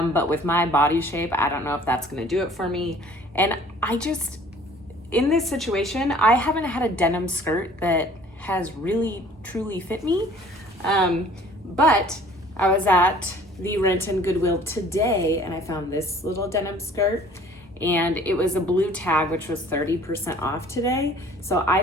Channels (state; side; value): normal; both; correlation 0.52